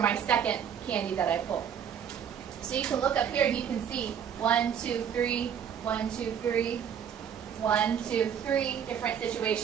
second candy that I pull. So you can look up here and you can see 1, 2, 3, 1, 2, 3, 1, 2, 3 different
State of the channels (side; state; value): left; quieter; 8.3 dB